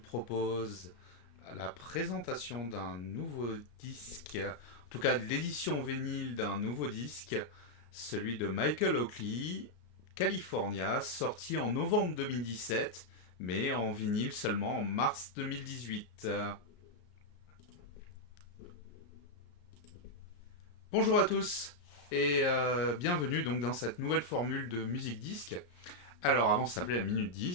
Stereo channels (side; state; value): right; late; 34 ms